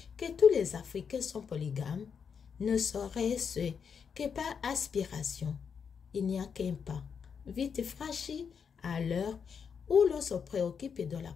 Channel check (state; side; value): quieter; right; 6.6 dB